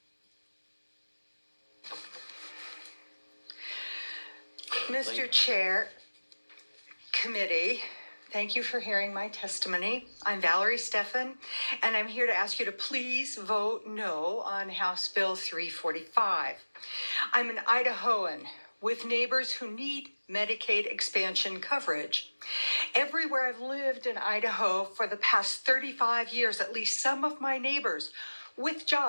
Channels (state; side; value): inverted; both; correlation -1.00